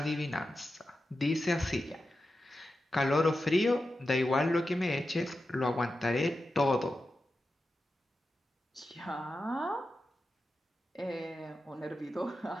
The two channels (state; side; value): normal; both; correlation 0.91